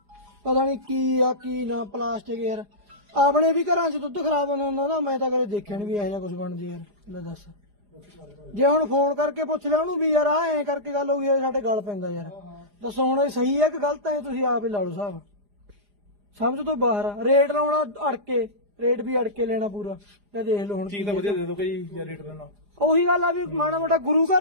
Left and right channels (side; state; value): left; late; 4.9 ms